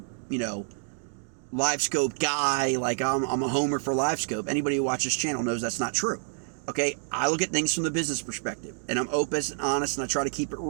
Livescope guy. Like I'm a homer for Livescope. Anybody who watches this channel knows that's not true. Okay, I look at things from the business perspective, and I'm open and honest, and I try to keep it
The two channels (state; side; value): silent; left; digital silence